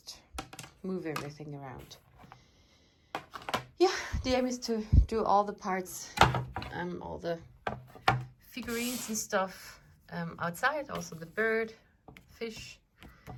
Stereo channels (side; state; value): both; identical; correlation 1.00